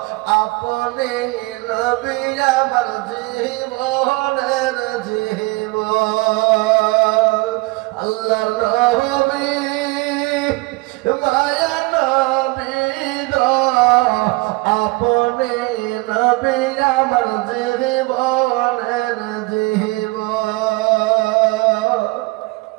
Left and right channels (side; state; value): left; quieter; 23.8 dB